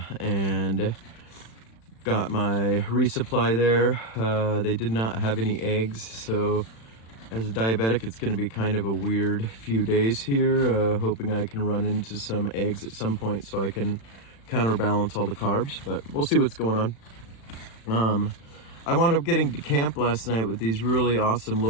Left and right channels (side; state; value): right; late; 36 ms